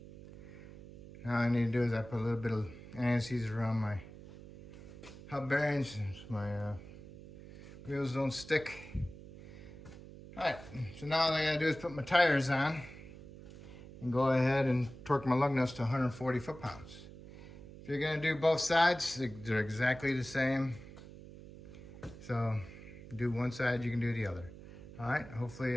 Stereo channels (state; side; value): noise; right; hum, 16 dB below the sound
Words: Now all I need to do is I put a little bit of anti-seize around my hub bearings so my wheels don't stick. All right, so now all I gotta do is put my tires on and go ahead and torque my lug nuts to 140 foot-pounds. If you're gonna do both sides, they're exactly the same. So do one side, you can do the other. All right,